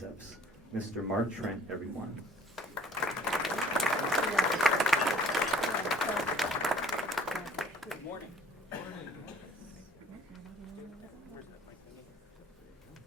Mr. Mark Trent, everyone. Good morning.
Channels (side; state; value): both; normal; correlation 0.54